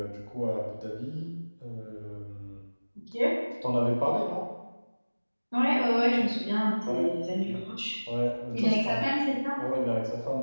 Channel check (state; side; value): inverted; both; correlation -1.00